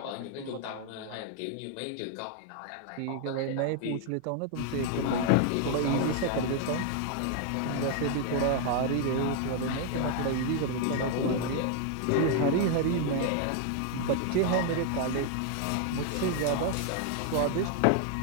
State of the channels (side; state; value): both; different; correlation 0.00